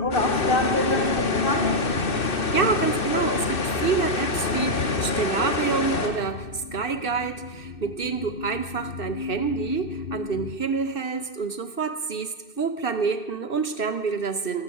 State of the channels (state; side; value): late; right; 2.6 ms